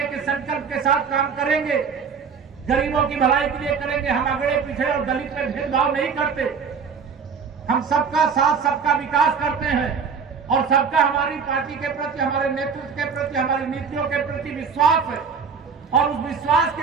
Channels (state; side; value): quieter; left; 5.9 dB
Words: के संकल्प के साथ काम करेंगे। गरीबों की भलाई के लिए करेंगे। हम अगड़े पिछड़े और दलित में भेदभाव नहीं करते। हम सबका साथ, सबका विकास करते हैं, और सबका हमारी पार्टी के प्रति, हमारे नेतृत्व के प्रति, हमारी नीतियों के प्रति विश्वास है, और उस विश्वास